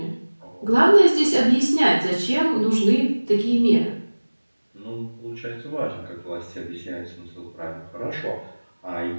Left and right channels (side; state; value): both; inverted; correlation -1.00